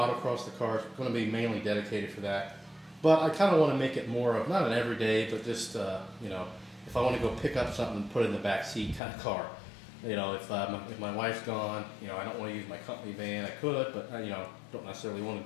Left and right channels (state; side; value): drops out; right; at 9.0 s